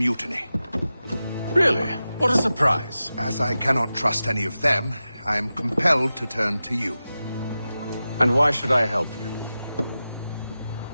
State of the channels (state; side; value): inverted; both; correlation -0.93